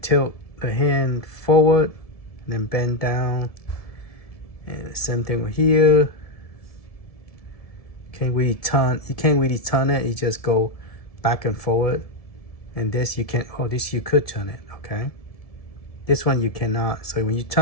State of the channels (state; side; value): late; right; 1.7 ms